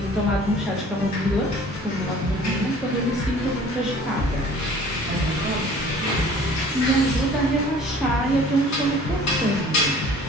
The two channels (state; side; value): normal; both; correlation 0.49